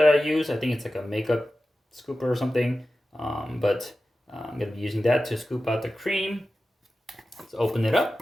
I use. I think it's like a makeup scooper or something. But I'm going to be using that to scoop out the cream. Let's open it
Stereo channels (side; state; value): both; normal; correlation 0.93